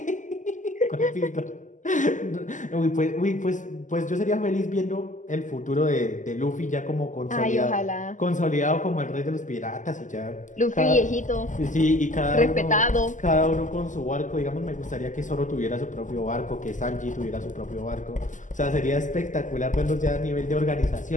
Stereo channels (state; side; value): late; right; 0.37 ms